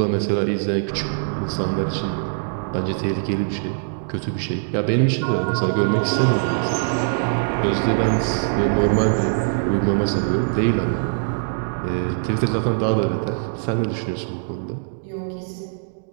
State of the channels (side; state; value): left; silent; digital silence